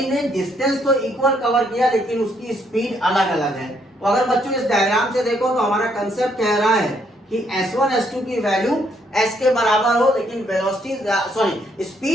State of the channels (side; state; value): both; normal; correlation 0.71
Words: ने डिस्टेंस तो इक्वल कवर किया लेकिन उसकी स्पीड अलग अलग है। तो अगर बच्चों इस डायग्राम से देखो तो हमारा कंसेप्ट कह रहा है कि S1 S2 की वैल्यू S के बराबर हो, लेकिन वेलोसिटी